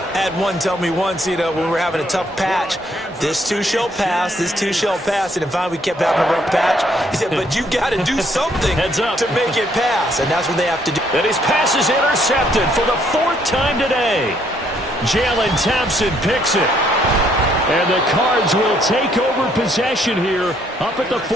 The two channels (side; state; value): both; normal; correlation 0.69